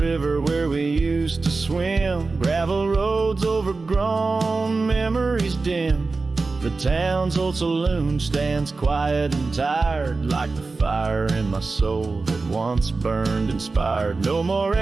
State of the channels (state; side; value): quieter; left; 3.9 dB